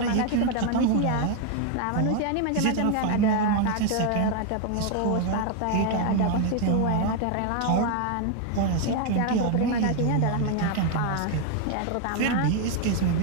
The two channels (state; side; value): different; both; correlation 0.00